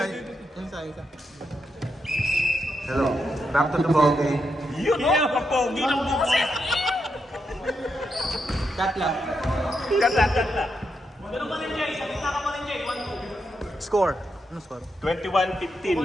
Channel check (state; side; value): normal; both; correlation 0.83